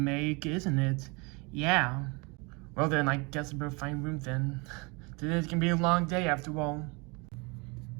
isn't it? Yeah. Well then, I guess I better find room then. Today's gonna be a long day after all.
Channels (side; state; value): left; quieter; 28.8 dB